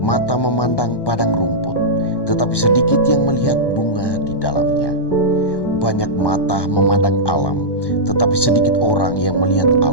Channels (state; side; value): late; right; 1.1 ms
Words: memandang padang rumput, tetapi sedikit yang melihat bunga di dalamnya. Banyak mata memandang alam, tetapi sedikit orang yang melihat